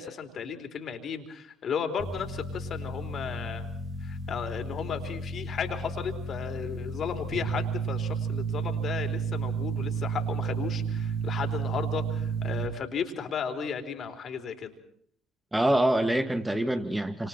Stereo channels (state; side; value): normal; both; correlation 0.69